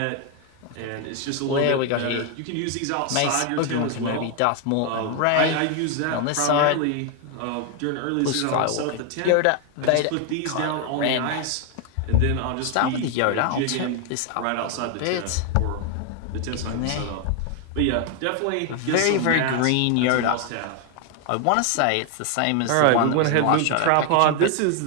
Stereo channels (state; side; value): different; both; correlation 0.01